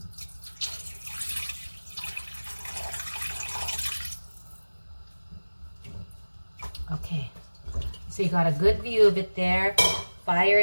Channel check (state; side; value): inverted; both; correlation -1.00